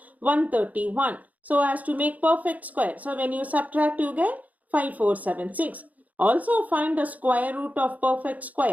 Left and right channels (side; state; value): left; late; 0.076 ms